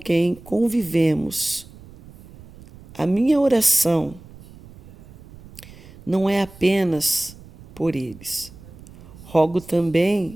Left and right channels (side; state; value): right; noise; rumble, 20 dB below the sound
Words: convivemos. A minha oração não é apenas por eles. Rogo